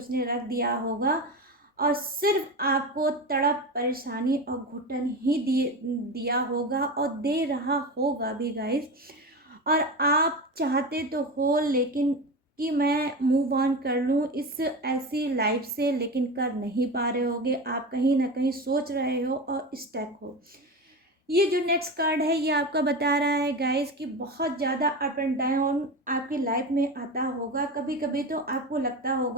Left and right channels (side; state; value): both; normal; correlation 0.24